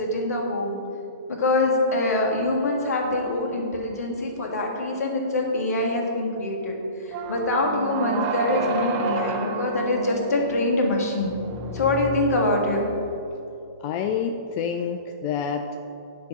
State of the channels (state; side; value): inverted; both; correlation -0.35